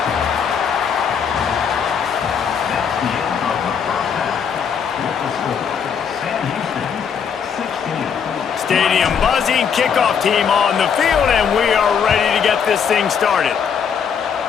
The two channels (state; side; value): quieter; right; 7.1 dB